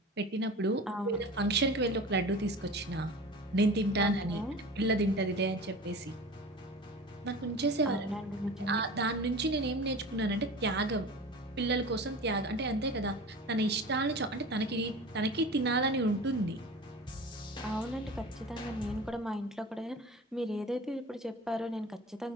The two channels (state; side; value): normal; both; correlation 0.35